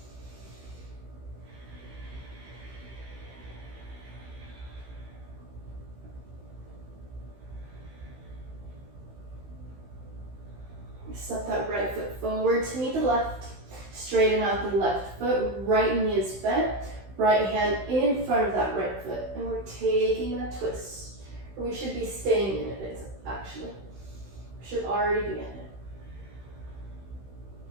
Step that right foot forward to meet the left. Straighten out the left foot, right knee is bent, right hand in front of that right foot. And we're taking that twist. Or we should be staying in it, actually. We should already be in it.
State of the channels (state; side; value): late; left; 16 ms